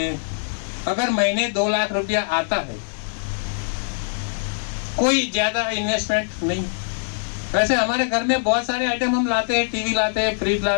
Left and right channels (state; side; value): silent; right; digital silence